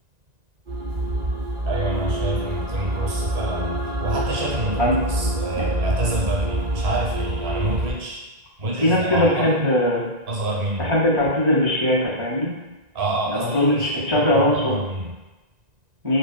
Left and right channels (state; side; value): late; left; 1.9 ms